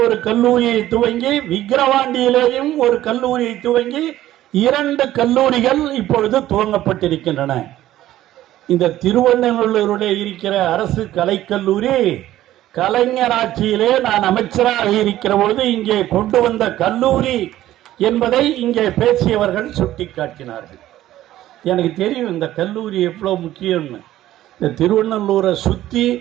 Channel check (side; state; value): left; quieter; 14.0 dB